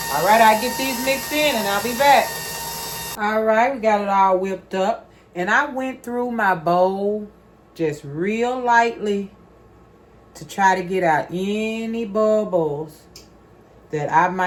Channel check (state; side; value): identical; both; correlation 1.00